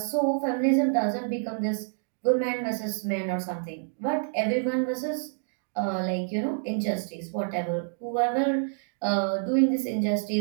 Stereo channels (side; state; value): left; silent; digital silence